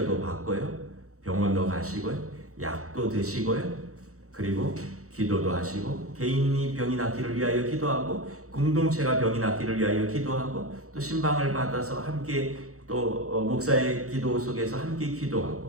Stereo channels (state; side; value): late; left; 0.65 ms